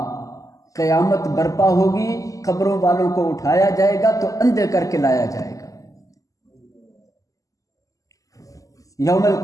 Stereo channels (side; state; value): right; late; 0.16 ms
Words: قیامت برپا ہوگی، قبروں والوں کو اٹھایا جائے گا تو اندھے کر کے لایا جائے گا۔ یوم